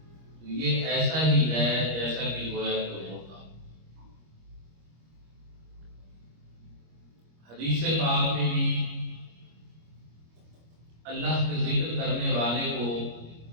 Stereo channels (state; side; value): late; left; 25 ms